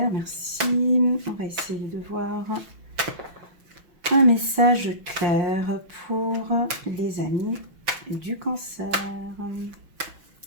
merci. On va essayer de voir un message clair pour les amis du cancer.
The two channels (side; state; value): left; late; 6.0 ms